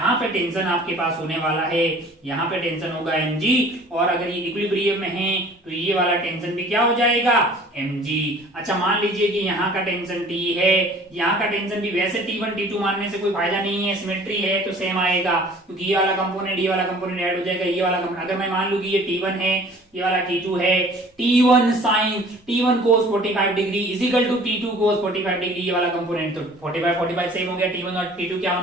पे टेंशन आपके पास होने वाला है, यहाँ पे टेंशन होगा mg, और अगर ये इक्विलिब्रियम में है तो ये वाला टेंशन भी क्या हो जाएगा? mg। अच्छा मान लीजिए कि यहाँ का टेंशन T है, यहाँ का टेंशन भी वैसे T1 T2 मानने से कोई फायदा नहीं है, सिमेट्री है तो सेम आएगा, क्योंकि ये वाला कंपोनेंट ये वाला कंपोनेंट ऐड हो जाएगा। ये वाला अगर मैं मान लू कि ये T1 है, ये वाला T2 है, T1 sin T1 cos 45 degree is equal to T2 cos 45 degree, ये वाला कंपोनेंट तो 45 सेम हो गया। T1 और T2 क्या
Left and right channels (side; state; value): both; normal; correlation 0.50